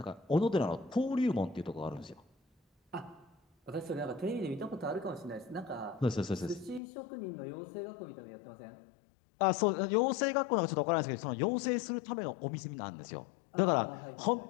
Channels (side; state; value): right; drops out; at 6.8 s